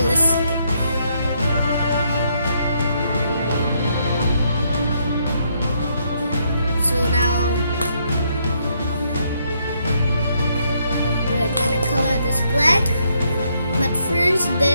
So now we're gonna color this black, but first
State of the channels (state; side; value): inverted; both; correlation -0.73